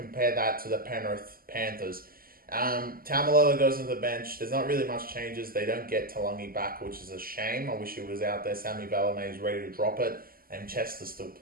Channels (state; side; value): late; left; 0.42 ms